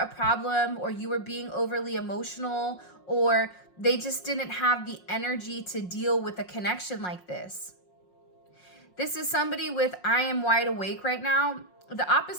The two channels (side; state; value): right; late; 5.5 ms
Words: problem or you were being overly emotional, or they just didn't have the energy to deal with a connection like this. This is somebody with I am wide awake right now. The